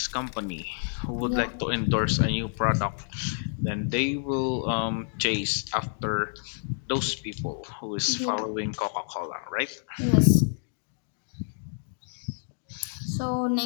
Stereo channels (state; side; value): silent; right; digital silence